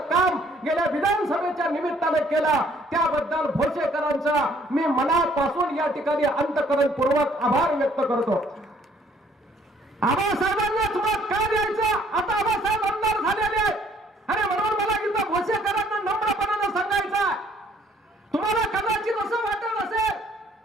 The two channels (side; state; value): both; normal; correlation 0.62